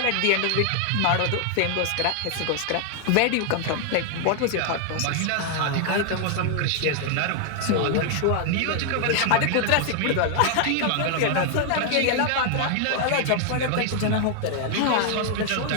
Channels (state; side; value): different; both; correlation 0.00